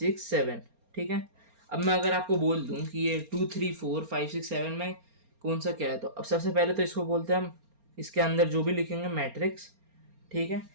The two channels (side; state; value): left; late; 4.3 ms